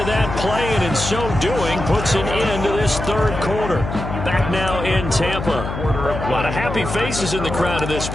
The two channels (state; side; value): noise; left; hum, 6 dB below the sound